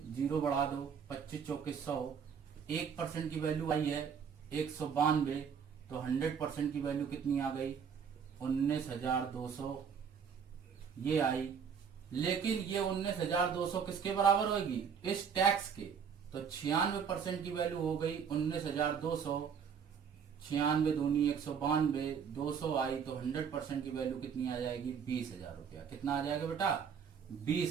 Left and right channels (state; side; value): quieter; left; 7.0 dB